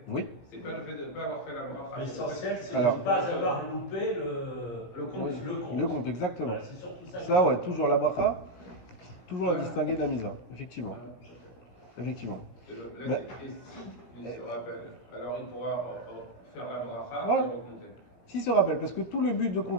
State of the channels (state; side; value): late; right; 17 ms